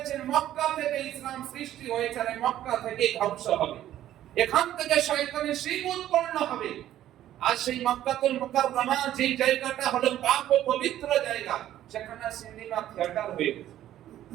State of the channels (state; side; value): quieter; left; 12.5 dB